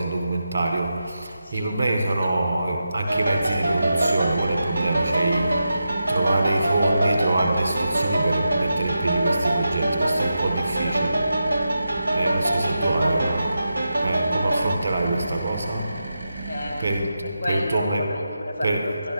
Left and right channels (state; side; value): inverted; both; correlation -0.89